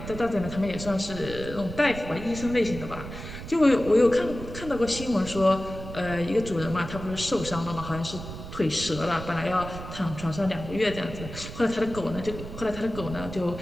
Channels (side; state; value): right; noise; rumble, 10 dB below the sound